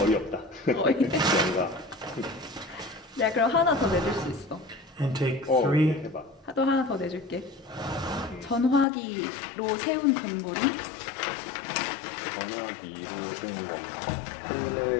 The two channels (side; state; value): right; drops out; at 8.8 s